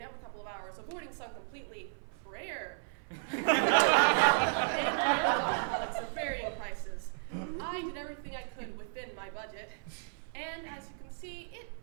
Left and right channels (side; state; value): left; silent; 55 dB below the other